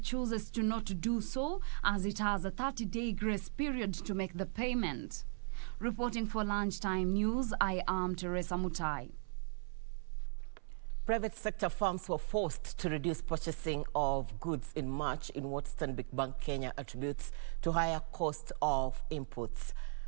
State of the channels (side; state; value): left; silent; 53 dB below the other